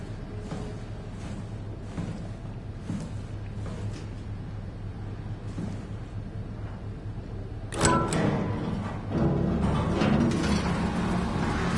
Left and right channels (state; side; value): identical; both; correlation 1.00